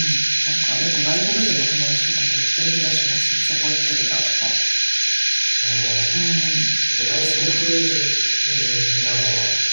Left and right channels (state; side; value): inverted; both; correlation -1.00